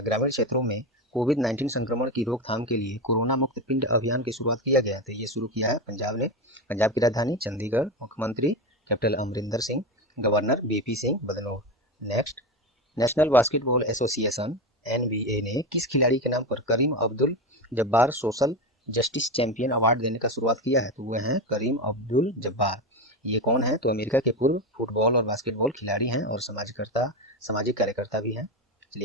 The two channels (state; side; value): normal; both; correlation 0.18